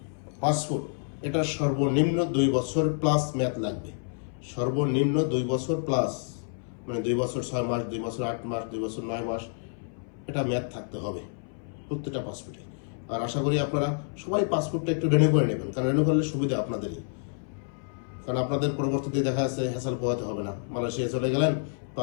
পাসপোর্ট, এটা সর্বনিম্ন 2 বছর প্লাস মেয়াদ লাগবে, সর্বনিম্ন 2 বছর প্লাস, 2 বছর 6 মাস, 2 বছর 8 মাস, 2 বছর 9 মাস, এটা মেয়াদ থাকতে হবে প্রত্যেকটা পাসপোর্টে। আর আশা করি আপনারা সবাই পাসপোর্টটা একটু রিনিউ করে নেবেন, কারণ রিনিউ করলে সুবিধা আপনাদেরই, কারণ আপনাদের পরবর্তীতে দেখা যাচ্ছে হ্যাসেল পোহাতে হবে না। মালয়েশিয়া চলে গেলেন,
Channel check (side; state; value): right; silent; 59 dB below the other